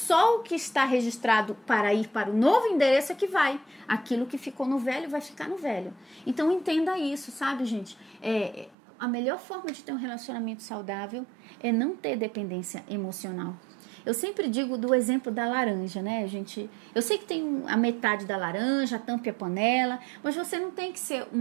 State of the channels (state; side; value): drops out; left; at 8.8 s